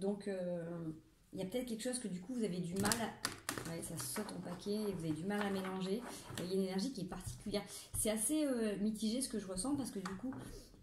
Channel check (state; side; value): identical; both; correlation 1.00